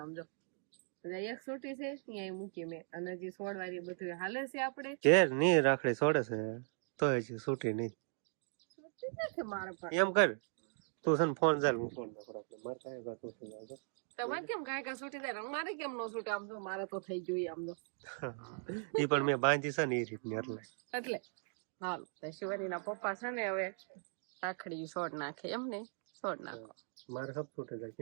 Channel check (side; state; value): left; silent; 52 dB below the other